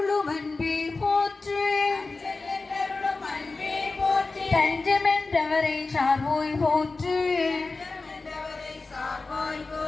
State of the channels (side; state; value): right; quieter; 3.7 dB